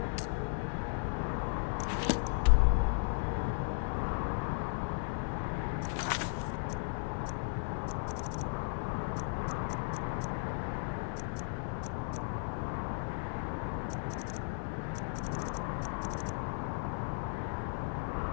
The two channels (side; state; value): right; silent; 54 dB below the other